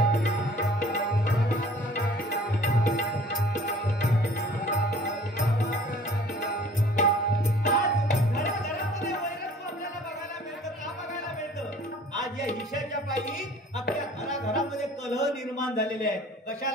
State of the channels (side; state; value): both; normal; correlation 0.50